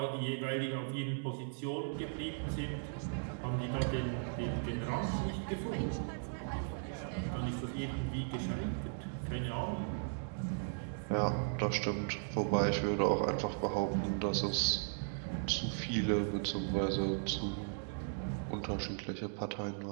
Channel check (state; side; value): silent; left; digital silence